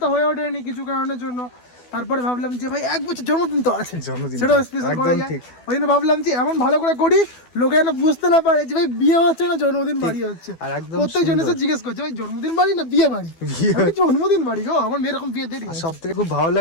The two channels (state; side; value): late; right; 12 ms